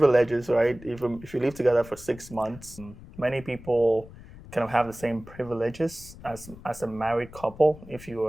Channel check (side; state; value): left; noise; rumble, 18 dB below the sound